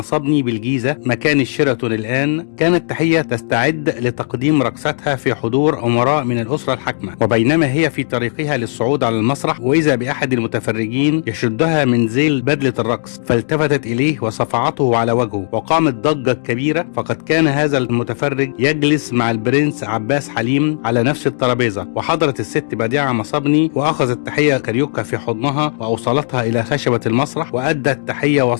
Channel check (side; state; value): right; silent; digital silence